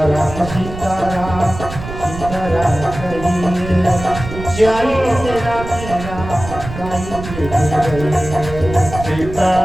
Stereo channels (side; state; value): right; noise; rumble, 10 dB below the sound